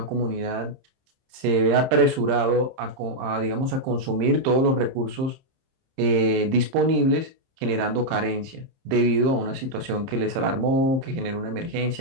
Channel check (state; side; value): late; left; 30 ms